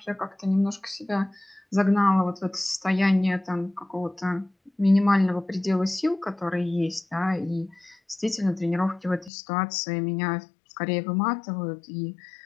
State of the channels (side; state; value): right; drops out; at 9.3 s